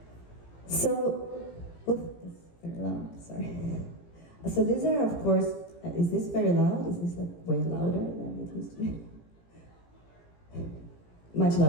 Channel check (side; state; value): right; late; 18 ms